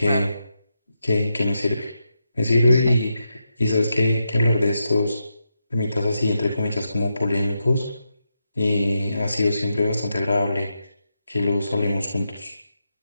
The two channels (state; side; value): inverted; both; correlation -0.86